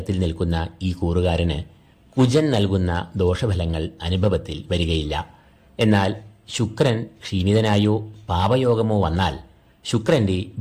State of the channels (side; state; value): both; identical; correlation 1.00